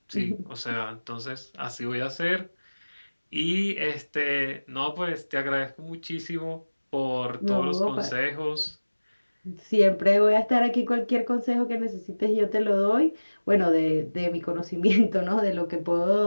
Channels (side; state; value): both; inverted; correlation -1.00